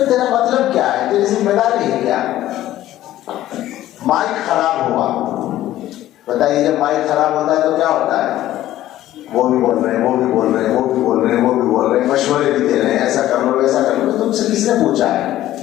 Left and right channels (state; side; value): quieter; right; 14.0 dB